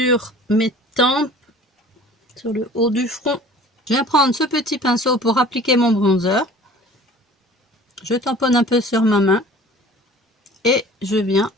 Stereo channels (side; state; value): both; normal; correlation 0.46